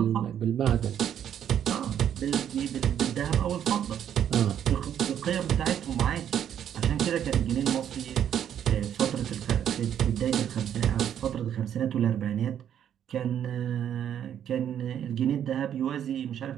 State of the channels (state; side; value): quieter; left; 9.6 dB